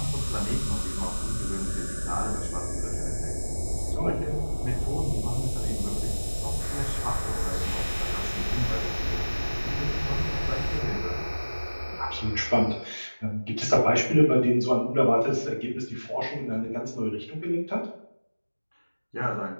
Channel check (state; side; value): inverted; both; correlation -1.00